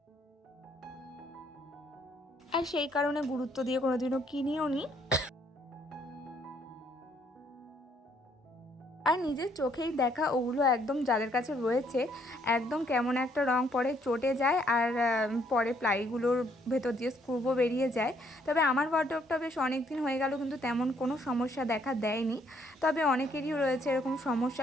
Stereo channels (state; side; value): normal; both; correlation 0.68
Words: আর সেই কারণে গুরুত্ব দিয়ে কোনোদিনও কিনিও নি। আর নিজের চোখেই দেখা ওগুলো একদম যাদের কাছে রয়েছে একদম কেমন একটা রং পরে চটে যায় আর পরে প্লাইগুলোর ভেতর দিয়ে স্ক্রুও বেরিয়ে যায়। তবে আমার ওয়ার্ডরোবটা বেশ অনেক দিন হয়ে গেল কিন্তু তেমন কোনো সমস্যা দেখা দেয়নি। তবে অনেকেরই রয়েছে এরকম